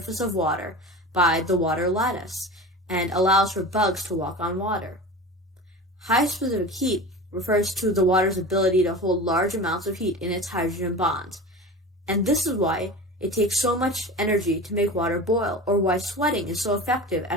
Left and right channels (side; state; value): both; normal; correlation 0.32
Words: of water by the water lattice and allows for bugs to walk on water. High specific heat refers to the water's ability to hold large amounts of heat in its hydrogen bonds, and this is why it takes so much energy to make water boil, or why sweating is so effective